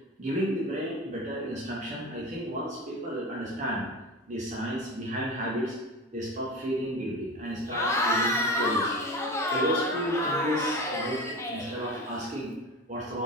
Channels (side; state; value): both; normal; correlation 0.29